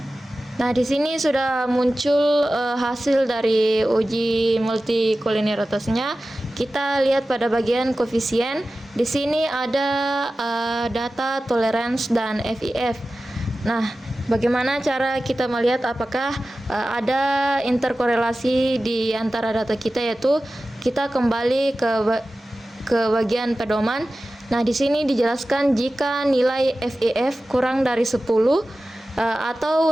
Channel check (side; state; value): both; normal; correlation 0.95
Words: Nah, di sini sudah muncul hasil dari uji multikolinearitasnya. Kita lihat pada bagian koefisien. Di sini ada data tolerance dan FIF. Nah, bagaimana cara kita melihat apakah ada interkorelasi di antara data kita, yaitu kita kembali ke bagian pedoman. Nah, di sini dijelaskan jika nilai FIF kurang dari 10 atau